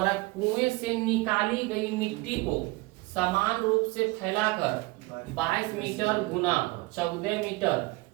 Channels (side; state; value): left; quieter; 23.2 dB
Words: कुएं से निकाली गई मिट्टी को समान रूप से फैलाकर 22 मीटर गुना 14 मीटर